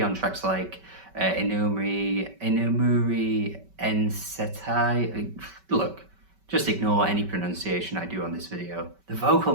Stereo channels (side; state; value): left; late; 5.2 ms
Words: on tracks like Inumuri Ensetai. Look, just ignore any pronunciation I do on this video. The